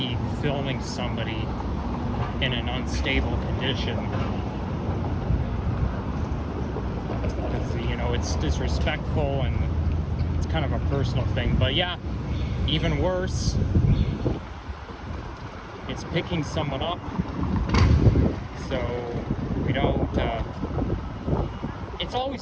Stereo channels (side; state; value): both; identical; correlation 1.00